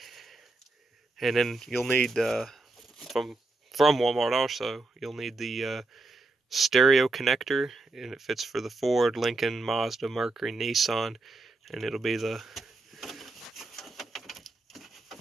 And then you'll need, from Walmart also, you'll need the stereo connector, and it fits for the Ford, Lincoln, Mazda, Mercury, Nissan, and it'll be the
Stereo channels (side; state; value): left; quieter; 3.1 dB